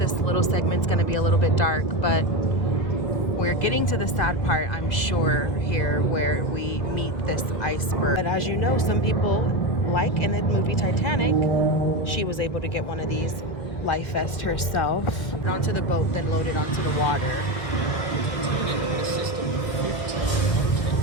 little segment is going to be a little bit dark, but we're getting to the sad part, I'm sure, here where we meet this iceberg. But as you know, some people, like in the movie Titanic, she was able to get one of these life vest herself. Onto the boat, then loaded onto the water. Titanic had a system of 15 watertight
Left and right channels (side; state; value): right; late; 1.5 ms